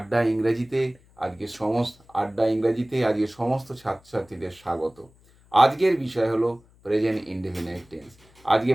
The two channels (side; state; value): left; noise; hum, 29 dB below the sound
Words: ইংরেজিতে আজকে সমস্ত ছাত্রছাত্রীদের স্বাগত। আজকের বিষয় হলো প্রেজেন্ট ইনডেফিনাইট টেন্স। আজকে